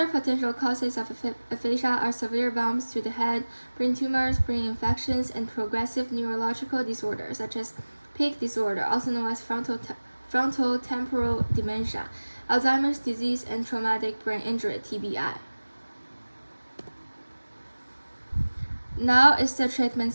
potential causes of aphasia are severe bumps to the head, brain tumors, brain infections, and progressive neurological disorders such as peak disorder, also known as frontotemporal dementia, Alzheimer's disease, and traumatic brain injury (TBI). Now is the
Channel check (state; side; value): inverted; both; correlation -1.00